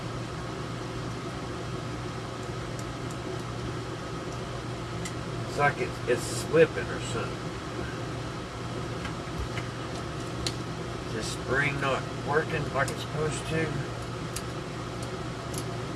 It's like it's slipping or something. Is the spring not working like it's supposed to?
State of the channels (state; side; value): identical; both; correlation 1.00